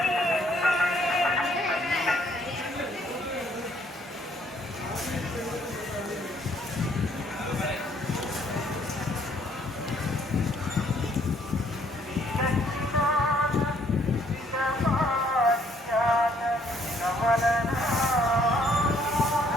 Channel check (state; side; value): normal; both; correlation 0.65